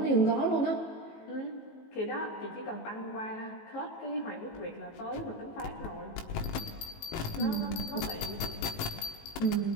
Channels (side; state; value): right; late; 19 ms